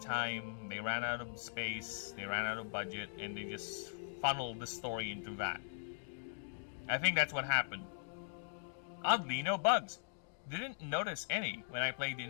time, they ran out of space, they ran out of budget, and they just funneled the story into that. I think that's what happened. Oddly, no bugs. Didn't notice any when I played the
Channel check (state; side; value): silent; right; digital silence